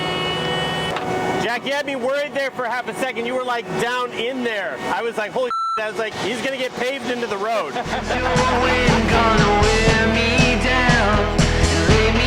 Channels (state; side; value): identical; both; correlation 1.00